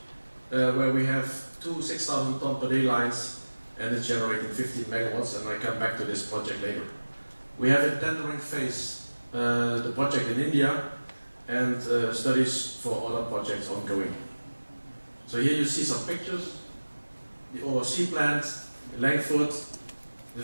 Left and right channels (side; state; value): both; inverted; correlation -1.00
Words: where we have 2 6,000 ton per day lines, and it's generating 15 megawatts, and I come back to this project later. We have in tendering phase the project in India, and studies for other projects ongoing. So here you see some pictures. The ORC plant in Langford, the